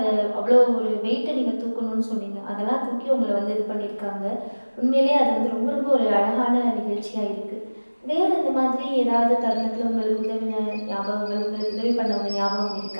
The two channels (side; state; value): both; inverted; correlation -1.00